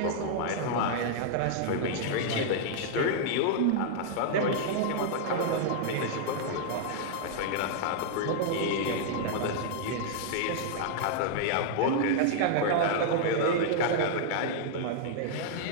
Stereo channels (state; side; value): different; both; correlation -0.01